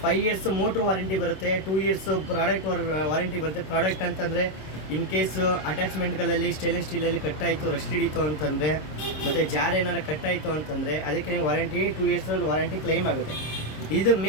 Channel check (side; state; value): right; late; 26 ms